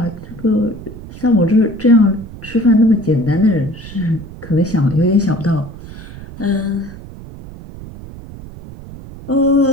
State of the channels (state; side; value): noise; right; rumble, 15 dB below the sound